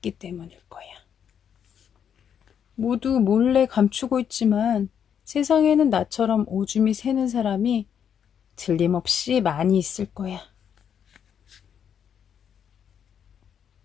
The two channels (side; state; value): right; quieter; 8.2 dB